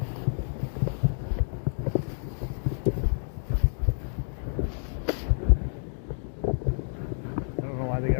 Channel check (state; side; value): silent; right; digital silence